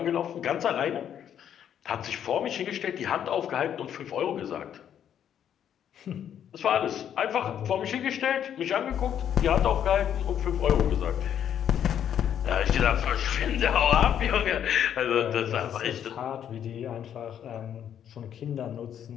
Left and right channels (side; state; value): right; quieter; 9.5 dB